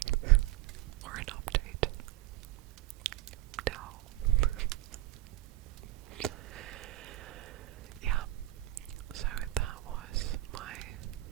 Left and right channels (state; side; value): quieter; left; 17.0 dB